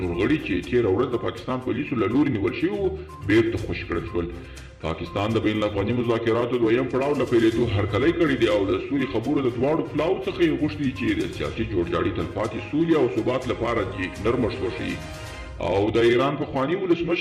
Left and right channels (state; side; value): identical; both; correlation 1.00